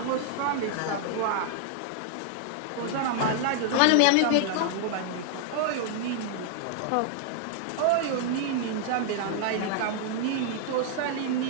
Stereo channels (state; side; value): different; both; correlation 0.00